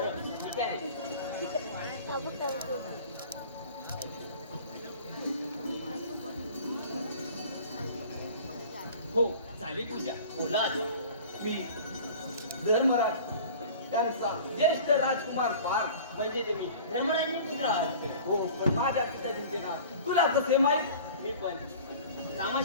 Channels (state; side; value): inverted; both; correlation -0.43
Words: ठीक आहे. हो झाली पूजा. बोला आता. मी धर्मराज त्यांचा ज्येष्ठ राजकुमार पार म्हणजे तुम्ही धर्मराजनी पूजा. हो पण माझ्या पिताजींचे नाव तुला कसे माहीत? मी पण रामा